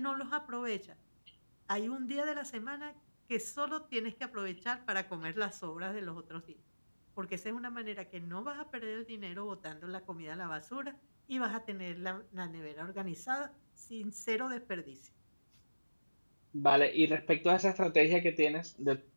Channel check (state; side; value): inverted; both; correlation -1.00